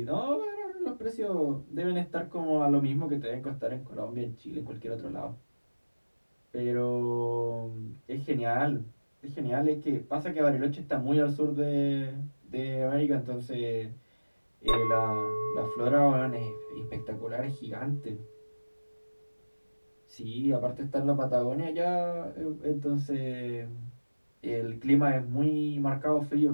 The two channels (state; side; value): inverted; both; correlation -1.00